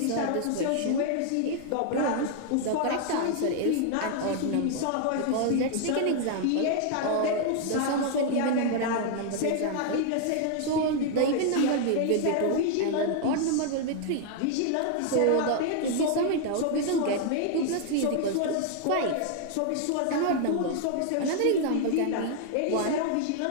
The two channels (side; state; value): both; different; correlation 0.00